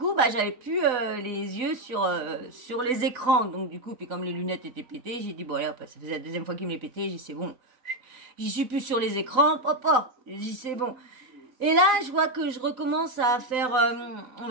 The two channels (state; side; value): late; left; 3.9 ms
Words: j'avais plus les yeux sur les écrans. Donc du coup, puis comme les lunettes étaient pétées, j'ai dit bon allez, ça faisait la deuxième fois qu'il me les pétait, j'ai dit c'est bon. J'y suis plus sur les écrans, papa. J'ai dit c'est bon. Et là, je vois que je recommence à faire, on